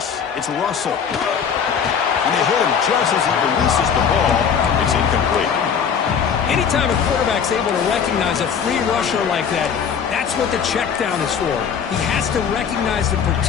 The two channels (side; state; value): right; quieter; 7.1 dB